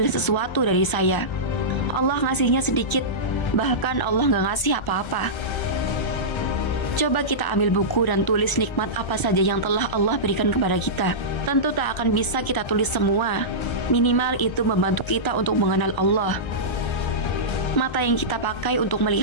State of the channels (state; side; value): late; right; 1.0 ms